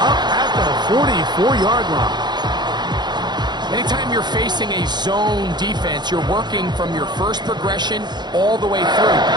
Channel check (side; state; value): left; late; 0.21 ms